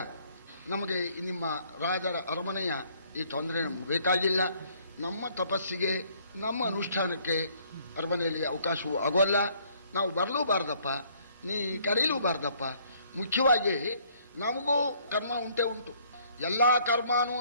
ನಮಗೆ ನಿಮ್ಮ ರಾಜರ ಅರಮನೆಯ ಈ ತೊಂದರೆ ನಮ್ಗೆ ಬೇಕಾಗಿಲ್ಲ. ನಮ್ಮ ತಪಸ್ಸಿಗೆ, ನಮ್ಮ ಅನುಷ್ಠಾನಕ್ಕೆ ಅರಮನೆಯಲ್ಲಿ ಅವಕಾಶವೂ ಆಗೋಲ್ಲ. ನಾವು ಬರಲೂಬಾರ್ದಪ್ಪ, ನೀ ಕರೀಲೂಬಾರ್ದಪ್ಪ. ಮುಖ್ಯವಾಗಿ ನಮಗೂ ಕರ್ಮ ಉಂಟೇ ಉಂಟು. ಎಲ್ಲ ಕರ್ಮನೂ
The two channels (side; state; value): both; inverted; correlation -0.63